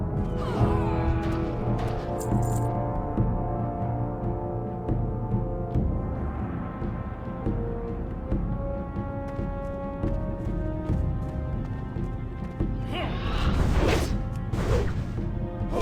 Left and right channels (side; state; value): both; identical; correlation 1.00